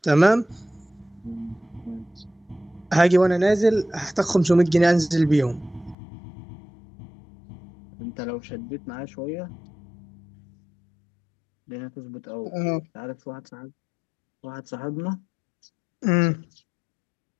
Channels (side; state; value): right; drops out; at 6.0 s